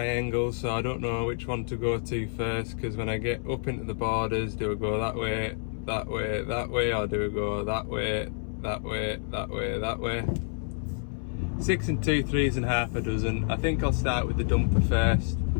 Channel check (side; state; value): right; silent; 59 dB below the other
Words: so I don't know which one to go to first, because when I get up into the borders, do I go that way, that way, that way, or do I go that way, that way, that way, that way? 6 and 2 3s and half a dozen. I think I'll start with the dumper first,